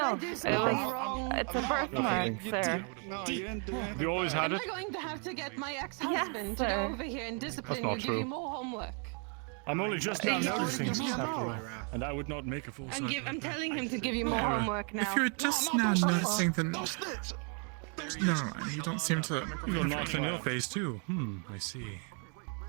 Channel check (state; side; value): quieter; left; 39.1 dB